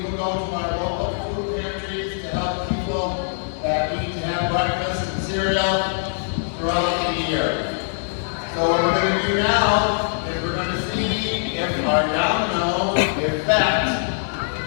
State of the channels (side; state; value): right; silent; digital silence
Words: go to our local food pantries to help people that need to have breakfast and cereal throughout the year. So what we're going to do now is we're going to see if our domino effect